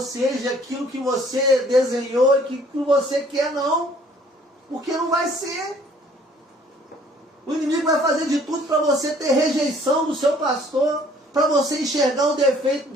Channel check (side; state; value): both; normal; correlation 0.57